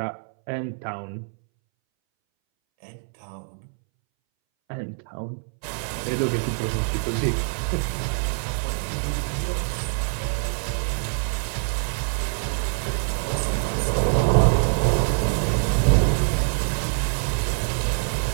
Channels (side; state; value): left; silent; 62 dB below the other